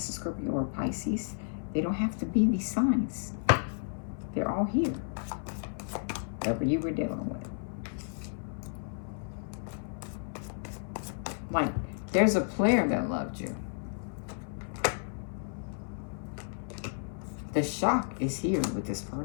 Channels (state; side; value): silent; right; 56 dB below the other